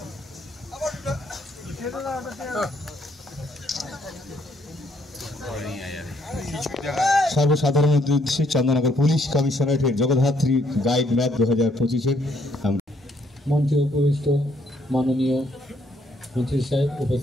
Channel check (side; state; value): both; normal; correlation 0.69